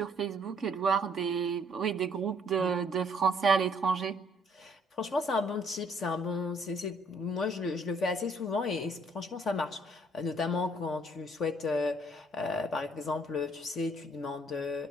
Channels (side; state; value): both; normal; correlation 0.63